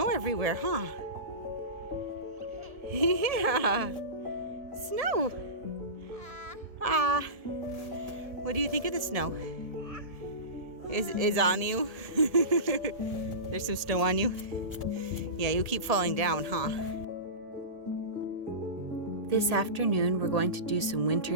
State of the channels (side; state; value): left; late; 1.8 ms